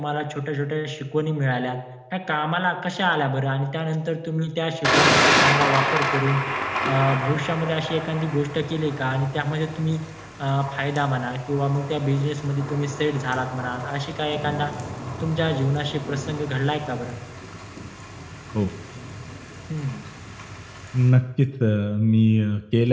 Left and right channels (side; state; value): both; identical; correlation 1.00